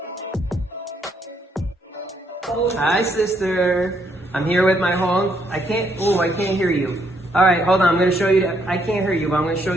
Hi, sister. I'm here with my home. I can't hear you. All right, hold on. I'm gonna show you. I can't hear you, but I'm gonna show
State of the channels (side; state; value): both; normal; correlation 0.73